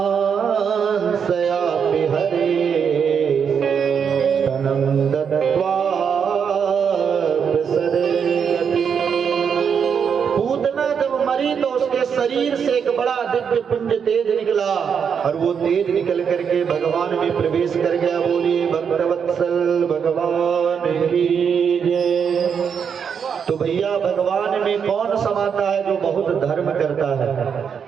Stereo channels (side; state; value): left; quieter; 7.0 dB